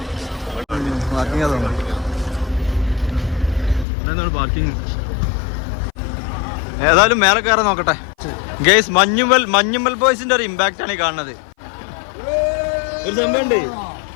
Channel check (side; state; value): right; drops out; at 3.9 s